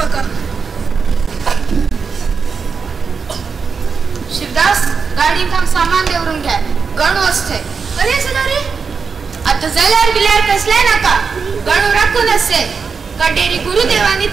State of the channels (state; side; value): quieter; left; 5.4 dB